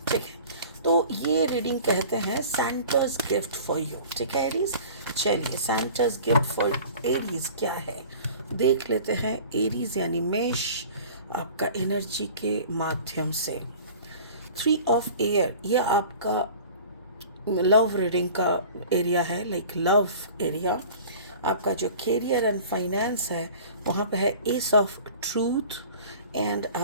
ठीक है, तो ये रीडिंग कहते हैं सैंटा's गिफ्ट फॉर यू. ठीक है एरीज, चलिए सैंटा's गिफ्ट फॉर एरीज क्या है देख लेते हैं. एरीज यानी मेष, आपका एनर्जी के माध्यम से 3 ऑफ एयर, ये आपका लव रीडिंग का एरिया है, लाइक लव एरिया. आपका जो कैरियर एंड फाइनेंस है वहाँ पे है एस ऑफ ट्रूथ, एंड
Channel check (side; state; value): both; inverted; correlation -0.43